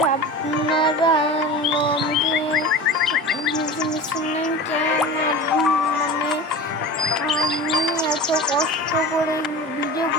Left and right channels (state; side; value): normal; both; correlation 0.33